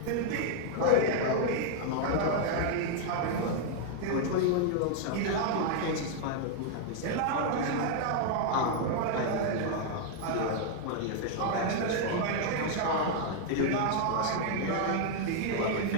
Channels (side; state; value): both; different; correlation 0.00